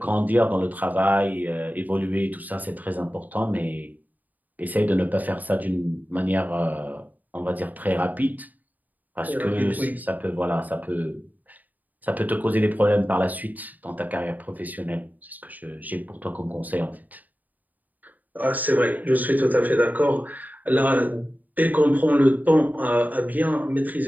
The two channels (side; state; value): left; late; 0.081 ms